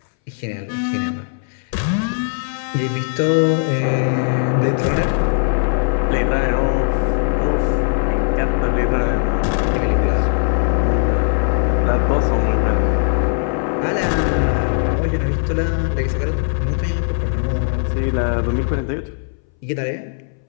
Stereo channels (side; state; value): right; silent; 63 dB below the other